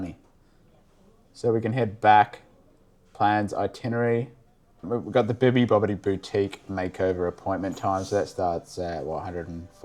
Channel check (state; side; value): identical; both; correlation 1.00